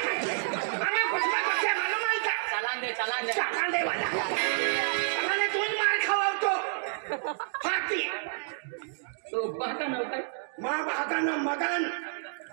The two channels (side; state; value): left; silent; digital silence